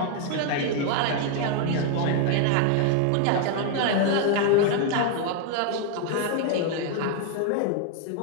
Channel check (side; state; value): both; different; correlation 0.00